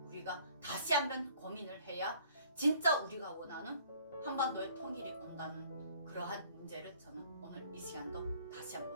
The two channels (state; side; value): inverted; both; correlation -0.57